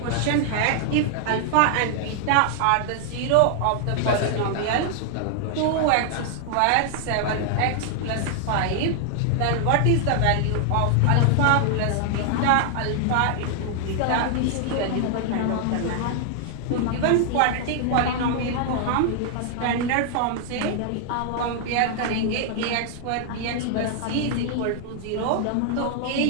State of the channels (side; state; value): both; different; correlation 0.00